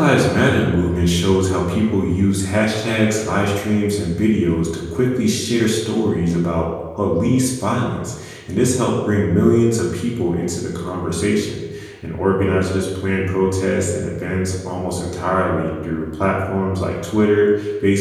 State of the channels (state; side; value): identical; both; correlation 1.00